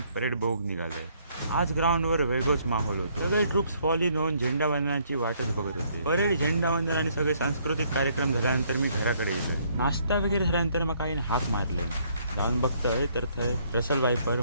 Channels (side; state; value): both; inverted; correlation -0.67